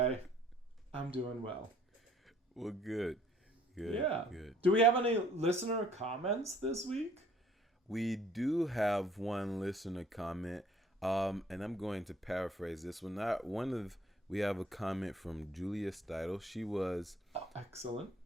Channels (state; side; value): normal; both; correlation 0.59